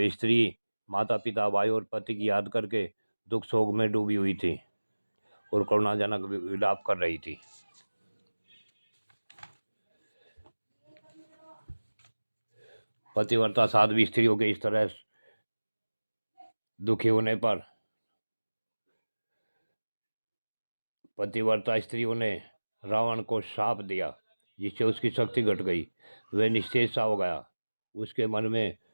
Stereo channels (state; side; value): inverted; both; correlation -1.00